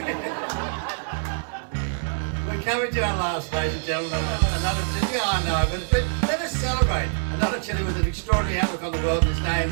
We're We're coming to our last, ladies and gentlemen. Another chili. Yeah, I know, but let us celebrate. Another chili with an extraordinary outlook on the world. His name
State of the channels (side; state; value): left; silent; digital silence